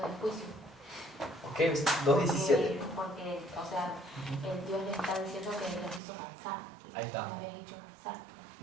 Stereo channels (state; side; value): drops out; left; at 6.0 s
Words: de juicio. Ok, 2:17. Porque, o sea, Dios le está diciendo que los hizo cansar. Ahí está. Lo habéis hecho cansar.